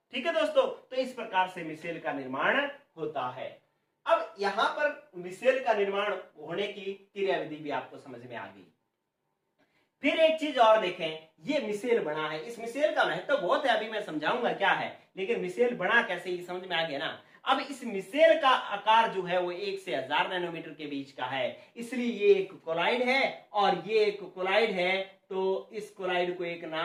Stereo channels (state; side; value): identical; both; correlation 1.00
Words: ठीक है दोस्तों। तो इस प्रकार से मिसेल का निर्माण होता है। अब यहां पर मिसेल का निर्माण होने की क्रियाविधि भी आपको समझ में आ गई। फिर एक चीज और देखें, ये मिसेल बना है, इस मिसेल का महत्व बहुत है, अभी मैं समझाऊंगा क्या है, लेकिन मिसेल बना कैसे ये समझ में आ गया ना। अब इस मिसेल का आकार जो है वो 1 से 1000 नैनोमीटर के बीच का है, इसलिए ये एक कोलाइड है और ये एक कोलाइड है। तो इस कोलाइड को एक